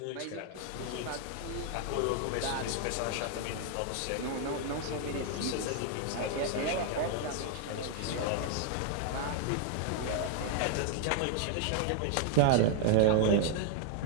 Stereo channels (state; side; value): different; both; correlation 0.00